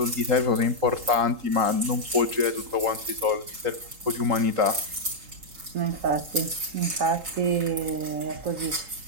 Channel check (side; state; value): left; late; 3.8 ms